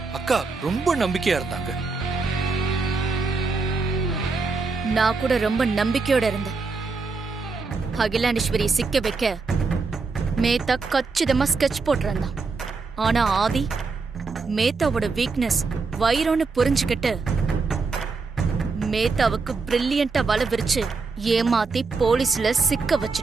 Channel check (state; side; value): quieter; left; 4.3 dB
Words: அக்கா ரொம்ப நம்பிக்கையா இருந்தாங்க. நான் கூட ரொம்ப நம்பிக்கையோட இருந்தேன். அகிலாண்டேஸ்வரி சிக்க வைக்க மேத்தா கச்சிதமா ஸ்கெட்ச் போட்டிருந்தான். ஆனா ஆதி மேத்தாவோட வீக்னஸ் வைரோன்னு புரிஞ்சுக்கிட்டு மேத்தாவுக்கு பிரில்லியண்டா வலை விரிச்சு ஏமாத்தி போலீஸ்ல சிக்க